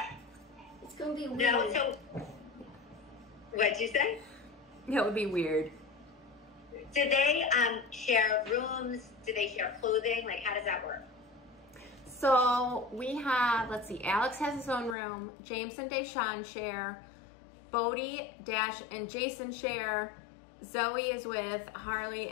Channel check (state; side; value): drops out; right; at 15.0 s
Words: It's going to be weird. No, so, what'd you say? That would be weird. Do they share rooms? Do they share clothing? Like, how does that work? So we have, let's see, Alex has his own room. James and Deshawn share. Bodie, Dash, and Jason share. Zoe is with Harley